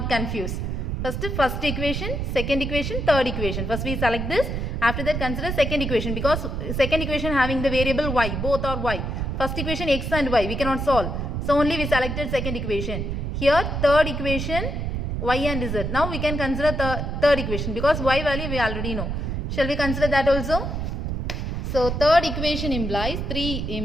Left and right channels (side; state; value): right; noise; rumble, 2 dB below the sound